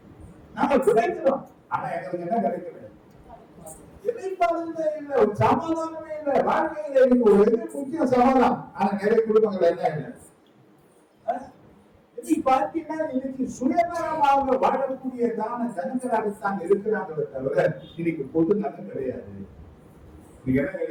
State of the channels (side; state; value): both; identical; correlation 1.00